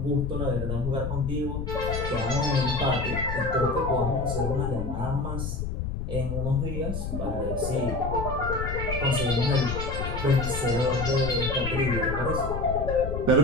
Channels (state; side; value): noise; left; rumble, 4 dB below the sound